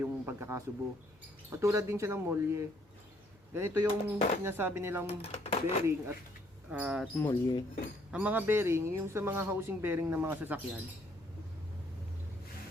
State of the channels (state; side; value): normal; both; correlation 0.67